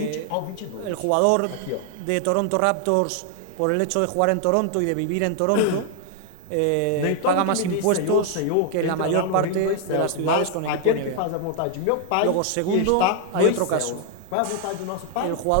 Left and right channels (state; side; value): different; both; correlation 0.00